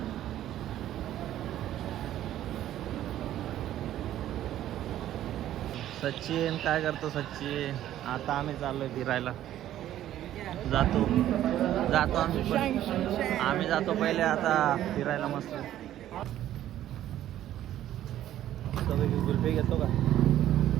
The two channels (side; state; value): left; quieter; 12.5 dB